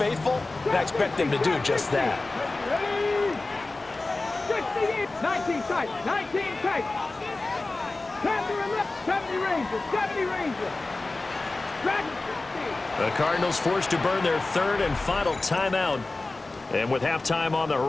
and I expect them to do just that. 19 tight, 19 tight. 70 Rangers, 70 Rangers. The Cardinals forced to burn their 3rd and final timeout. And with halftime on the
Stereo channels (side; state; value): right; quieter; 3.2 dB